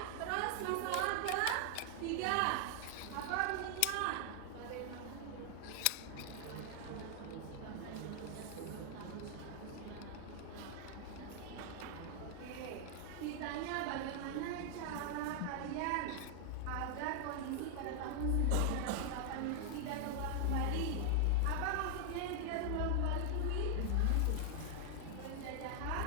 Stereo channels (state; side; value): different; both; correlation 0.00